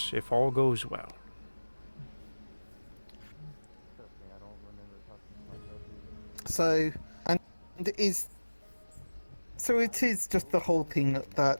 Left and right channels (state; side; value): inverted; both; correlation -1.00